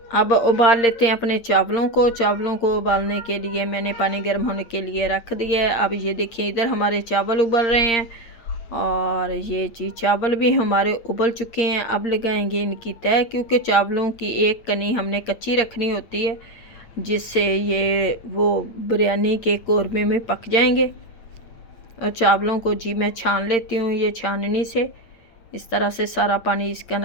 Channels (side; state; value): right; late; 8.7 ms